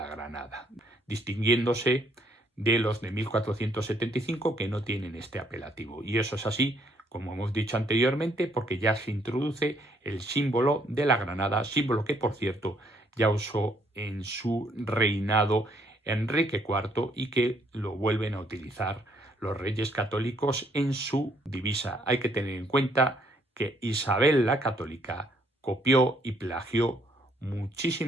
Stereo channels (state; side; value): normal; both; correlation 0.68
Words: Granada, distinguiéndose de los de 1475 que no tienen este apelativo. Y eso es así, como hemos dicho anteriormente, porque ya se introduce el símbolo de la Granada, símbolo que, por cierto, ya usó en su reinado Enrique IV y que lo vuelven a utilizar los reyes católicos en su divisa. Hay que tener en cuenta que Isabel la Católica copió y plagió